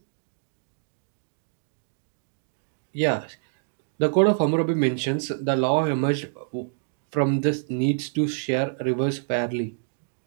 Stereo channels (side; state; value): left; silent; digital silence